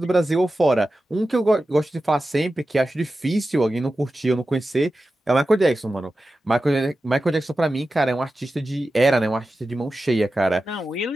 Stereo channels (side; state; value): both; normal; correlation 0.93